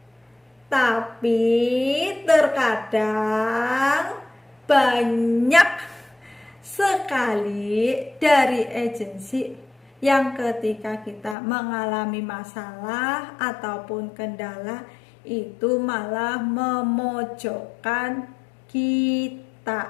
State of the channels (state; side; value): drops out; right; at 11.4 s